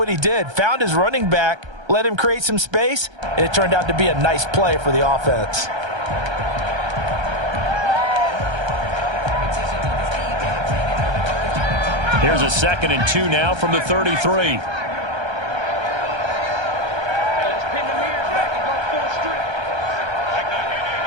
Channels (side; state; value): left; late; 1.3 ms